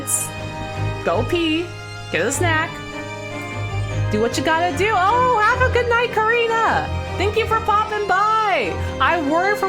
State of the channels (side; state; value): both; identical; correlation 1.00